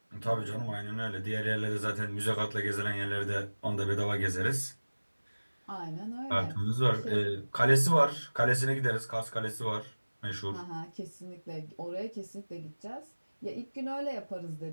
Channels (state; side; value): inverted; both; correlation -1.00